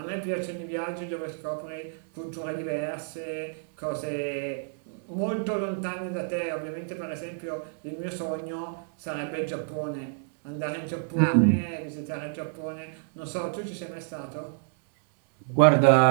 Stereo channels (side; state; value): left; silent; 59 dB below the other